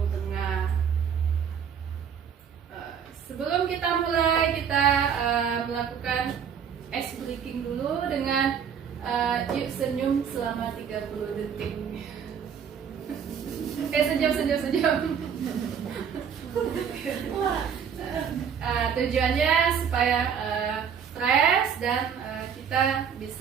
Tengah. Sebelum kita mulai, kita melakukan ice breaking dulu dengan yuk senyum selama 30 detik. Senyum. Tujuannya supaya fresh dan kita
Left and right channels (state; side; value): quieter; left; 7.5 dB